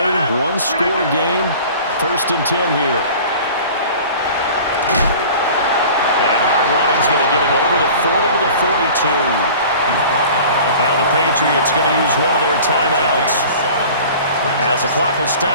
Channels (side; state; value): both; inverted; correlation -0.42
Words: one-score game. 1st and 10 here. And hard running's going to get him over the 40 to the 42. Now the Patriots going to use one of their timeouts. As the clock will